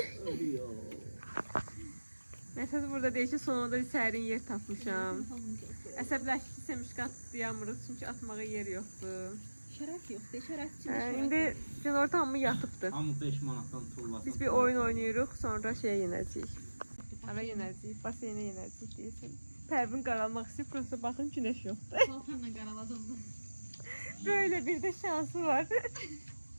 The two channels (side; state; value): both; inverted; correlation -1.00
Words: Məsəl burada deyir ki, sonunda bir sərin yer tapmışam. Əsəbləşdiysə müşkat atlayamırıq çünki atmağa yer yoxdur. Şərəf yoxdur, şərəf üçün İndi günorta hamı yatıbdı. Hamı 5 manatdan tullasın. Biz bir oyun oynayırıq, sonra şeyə yenəcəyik. Hara yenəcəyik, baseynə yenəcəyik deyirsən. Pərvin qaralmaq istəyir, prosta baxın günəş yoxdur. paltarla qaraladım. Böyle bir de şansı var.